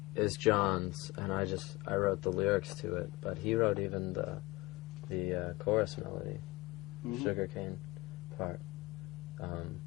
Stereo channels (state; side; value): quieter; right; 22.0 dB